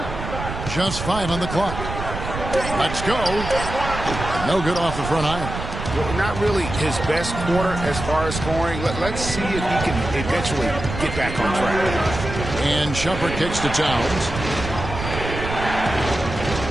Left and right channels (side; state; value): right; noise; rumble, 7 dB below the sound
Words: Just 5 on the clock. Let's go. No good off the front iron. Well, not really his best quarter as far as scoring. Let's see if he can eventually get back on track. And Shumpert kicks to Towns.